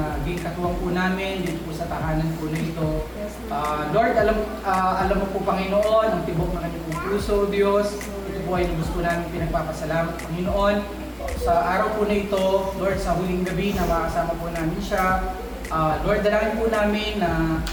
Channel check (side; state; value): both; identical; correlation 1.00